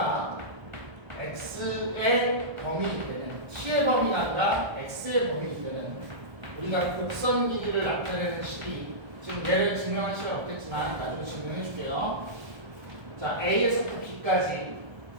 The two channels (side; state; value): left; late; 1.3 ms